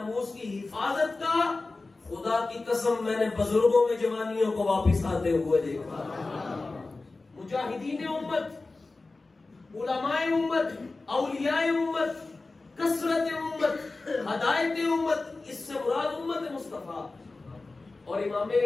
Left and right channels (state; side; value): quieter; right; 3.5 dB